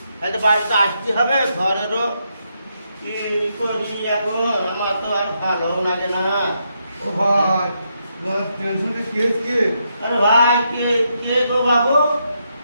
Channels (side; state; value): both; inverted; correlation -0.80